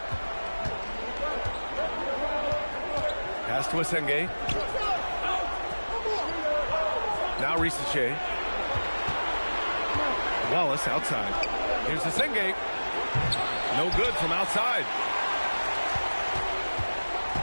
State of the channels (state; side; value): inverted; both; correlation -1.00